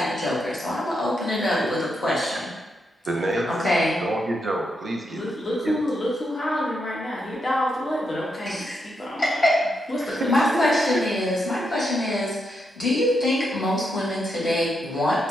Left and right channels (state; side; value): normal; both; correlation 0.82